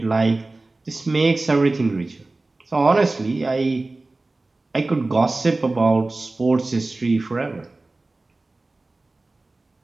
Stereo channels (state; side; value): quieter; left; 3.1 dB